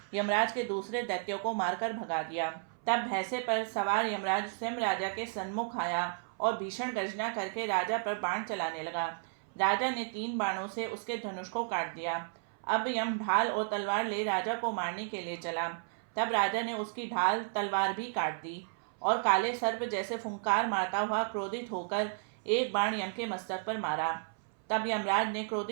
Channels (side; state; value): left; silent; 56 dB below the other